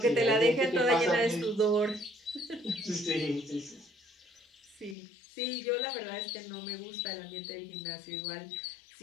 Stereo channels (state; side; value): drops out; right; at 5.0 s